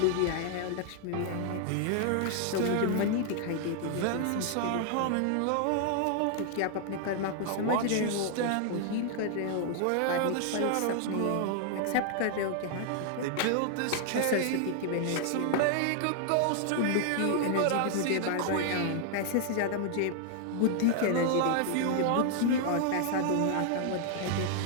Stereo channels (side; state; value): both; different; correlation 0.00